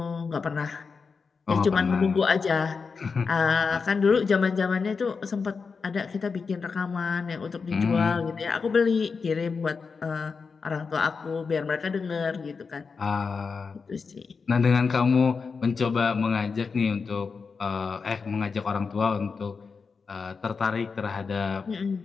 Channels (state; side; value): quieter; right; 5.1 dB